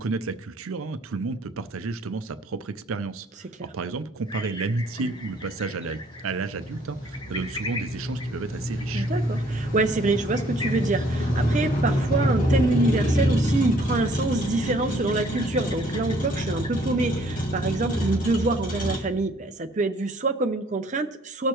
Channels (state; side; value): normal; both; correlation 0.61